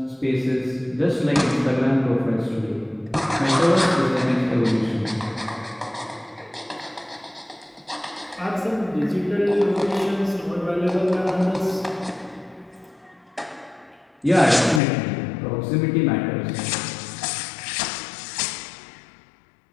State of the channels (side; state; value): right; drops out; at 14.8 s